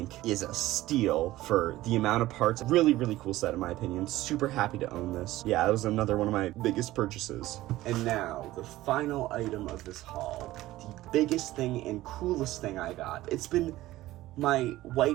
is a steal for the amount of parts. Really, really cool set in my opinion. Super happy to own this. Yeah, that was another one of my biggest purchases. And now, the final item of this haul. The biggest thing and coolest thing I got. It's been my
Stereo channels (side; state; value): left; quieter; 16.4 dB